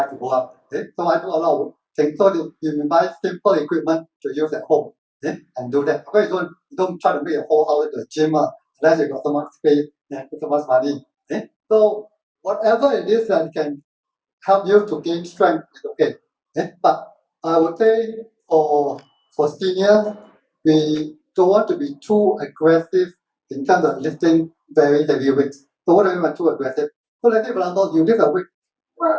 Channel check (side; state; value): both; identical; correlation 1.00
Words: to go out. Okay? So I do a lot of things. So you buy simple equipment to use at home. Okay? And do that. Okay, you don't try to make a whole house into a gym unless you got so much space and so much money. Okay? So whatever it is that can help you to gain strength is okay. Okay? But I would say for seniors, we don't want to be too aggressive in terms of lifting very heavy weights. So what do I mean by too aggressive? So let's say for example, you lift a weight.